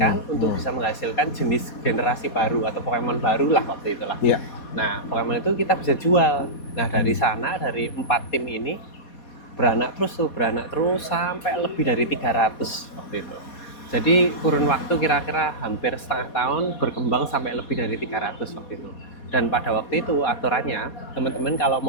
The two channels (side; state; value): right; late; 4.2 ms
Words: untuk bisa menghasilkan jenis generasi baru atau Pokemon baru lah waktu itulah. Iya. Nah Pokemon itu kita bisa jual. Nah dari sana, dari 4 tim ini beranak terus sampai lebih dari 300 waktu itu. Jadi kurun waktu kira-kira hampir setengah tahun berkembang sampai lebih dari 300 waktu itu. Dan pada waktu itu aturannya teman-teman kalau